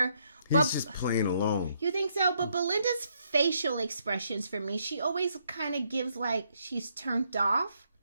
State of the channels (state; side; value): inverted; both; correlation -0.73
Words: But He's just playing along. You think so? But Belinda's facial expressions for me, she always kind of gives like she's turned off.